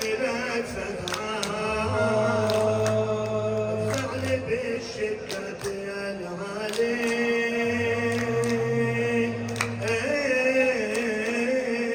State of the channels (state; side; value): identical; both; correlation 1.00